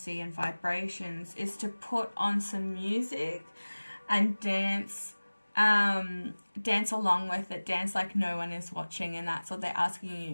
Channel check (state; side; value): inverted; both; correlation -1.00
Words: and vibrations is to put on some music and dance along with it, dance like no one is watching. And that's what they're